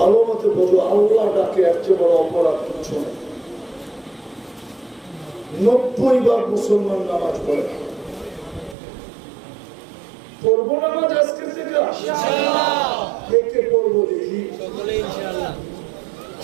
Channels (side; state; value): left; drops out; at 8.8 s